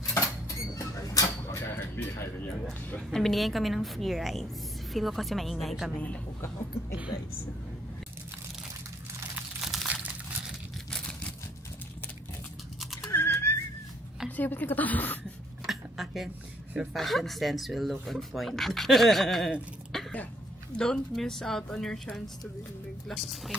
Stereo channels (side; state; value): both; normal; correlation 0.66